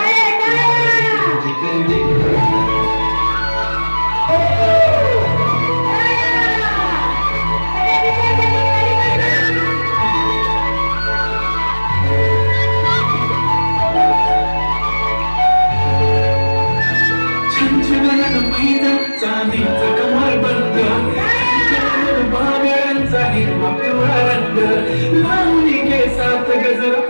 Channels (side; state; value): both; inverted; correlation -1.00